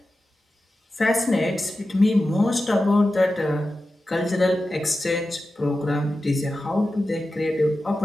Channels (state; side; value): normal; both; correlation 0.93